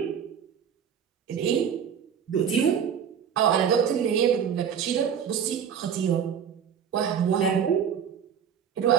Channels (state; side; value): quieter; left; 8.0 dB